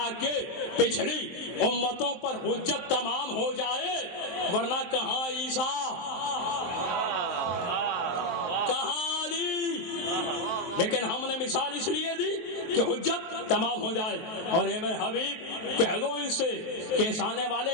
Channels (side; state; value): right; late; 23 ms